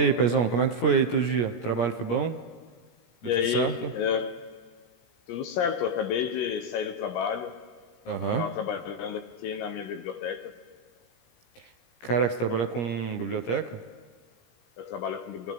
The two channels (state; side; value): late; right; 17 ms